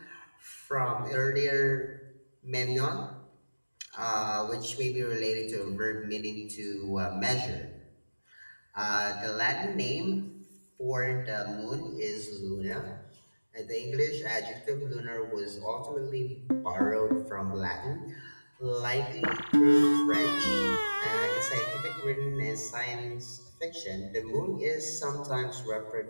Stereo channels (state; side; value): inverted; both; correlation -1.00